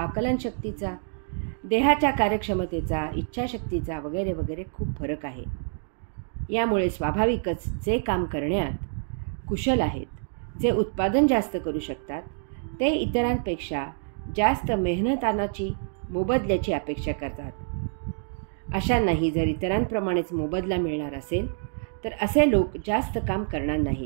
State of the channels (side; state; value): left; silent; digital silence